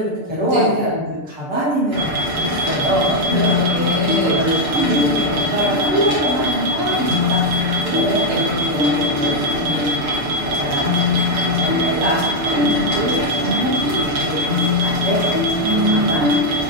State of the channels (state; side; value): late; left; 6.8 ms